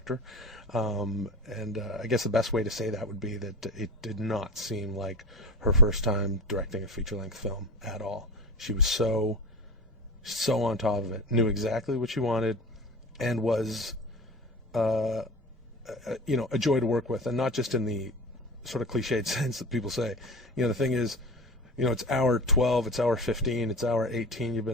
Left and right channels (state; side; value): normal; both; correlation 0.31